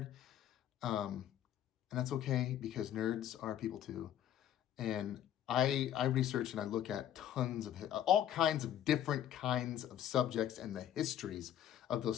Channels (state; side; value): quieter; right; 10.9 dB